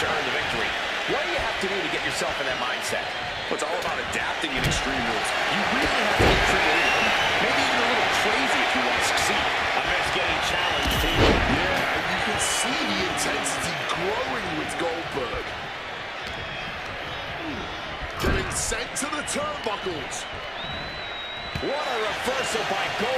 earn the victory. What do you have to do to get yourself in that mindset? Well, it's all about adapting in Extreme Rules. You really have to get creative. Maybe even a little crazy if you want to succeed. I bet it's getting challenged here. Yeah, and you can see the intensity growing with Goldberg. Getting sent to the turnbuckles. What a reversal by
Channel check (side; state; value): both; identical; correlation 1.00